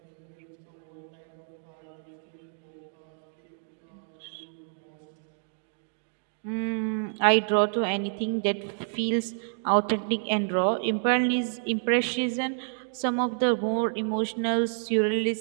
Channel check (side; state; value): left; silent; digital silence